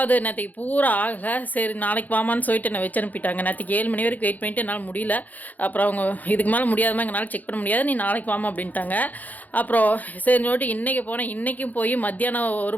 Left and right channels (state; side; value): late; right; 0.081 ms